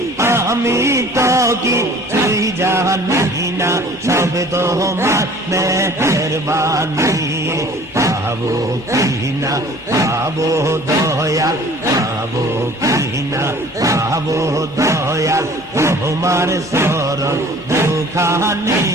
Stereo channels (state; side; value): normal; both; correlation 0.49